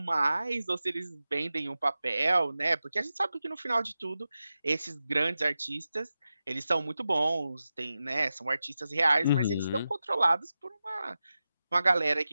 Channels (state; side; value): inverted; both; correlation -0.92